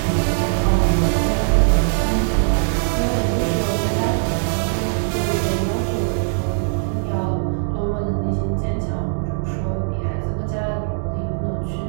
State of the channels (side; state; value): left; silent; digital silence